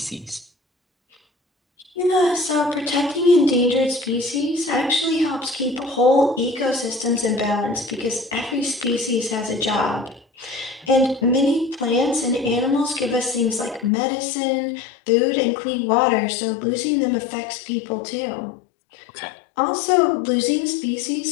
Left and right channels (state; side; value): drops out; right; at 13.9 s